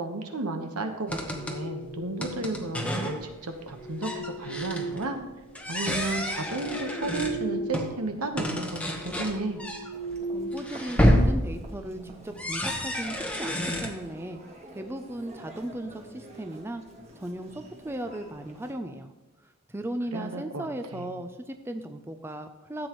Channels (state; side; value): normal; both; correlation 0.61